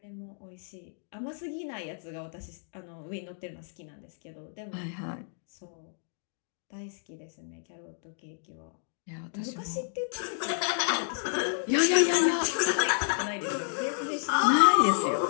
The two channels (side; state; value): right; silent; digital silence